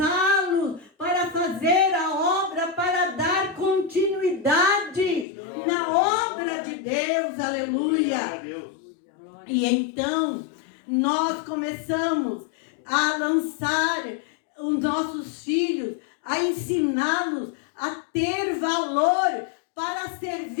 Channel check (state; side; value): drops out; right; at 5.2 s